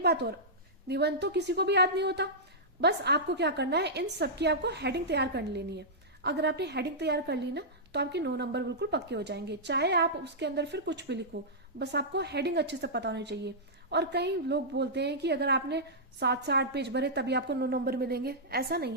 बात और, निबंध तो किसी को भी याद नहीं होता, बस आपको क्या करना है, इन सब की आपको हेडिंग तैयार कर लेनी है। अगर आपने हेडिंग तैयार कर ली ना तो आपके 9 नंबर बिल्कुल पक्के हो जाएंगे, चाहे आप उसके अंदर फिर कुछ भी लिखो, बस आपको हेडिंग अच्छे से पता होनी चाहिए। और कई लोग बोलते हैं कि अगर आपने 7 से 8 पेज भरे तभी आपको 9 नंबर मिलेंगे, ऐसा नहीं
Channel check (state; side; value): normal; both; correlation -0.12